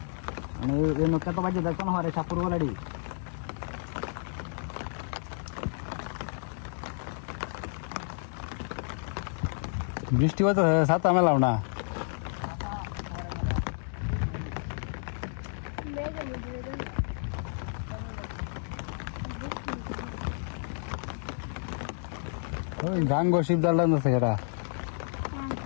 মানে এই নৌকা তো বাজে দেখো না, হরে সাপুর বলাডি। বৃষ্টি হতো, ছাতা মেলাও না। ওই গাঙ্গ শিবদার লাগছে কেরা?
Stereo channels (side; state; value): right; silent; digital silence